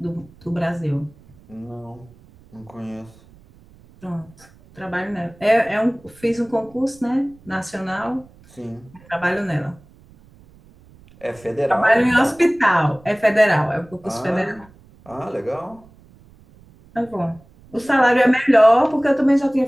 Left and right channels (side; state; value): right; noise; rumble, 26 dB below the sound